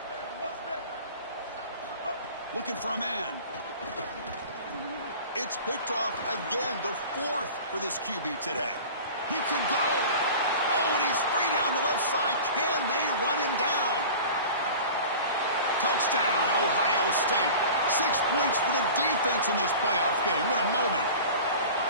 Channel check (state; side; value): inverted; both; correlation -0.38